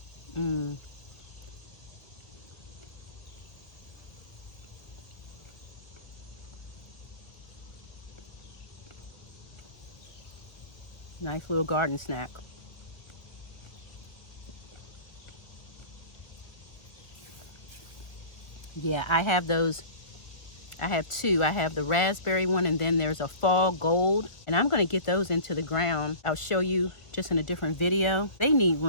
Mmm. Nice little garden snack. Yeah, I have those. I have 2. I have the raspberry one, and then there's a fall gold. And I'm going to get those into the ground. I'll show you just in a different video. They need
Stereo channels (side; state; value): right; late; 1.6 ms